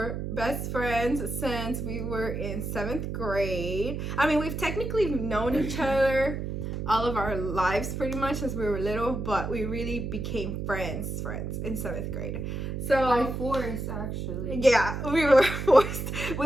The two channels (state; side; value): noise; right; hum, 4 dB below the sound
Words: best friends since we were in 7th grade. I mean, we've technically known each other all of our lives pretty much since we were little, but we really became friends in 7th grade. So By force, actually. yeah, we were forced.